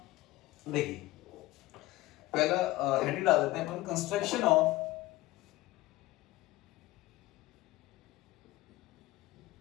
देखिए, पहला हेडिंग डाल देते हैं अपन, कंस्ट्रक्शन ऑफ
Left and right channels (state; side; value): quieter; right; 18.0 dB